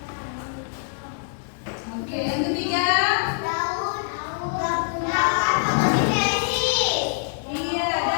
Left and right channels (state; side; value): silent; right; digital silence